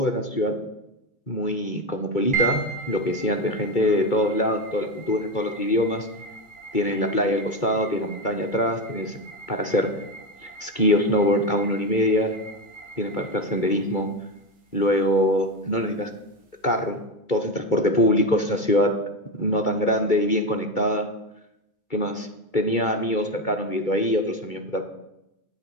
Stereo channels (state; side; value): late; right; 2.3 ms